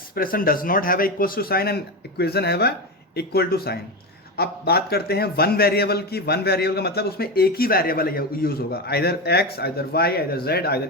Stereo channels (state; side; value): normal; both; correlation 0.18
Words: does not have equals to sign and equation have a equal to sign. अब बात करते हैं वन वेरिएबल की. वन वेरिएबल का मतलब उसमें एक ही वेरिएबल यूज होगा, either X, either Y, either Z,